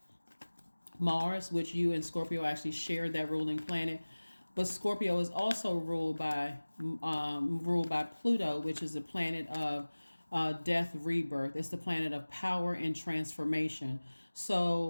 Mars, which you and Scorpio actually share that ruling planet. But Scorpio is also ruled by Pluto, which is the planet of death, rebirth. It's the planet of power and transformation.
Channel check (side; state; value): both; inverted; correlation -1.00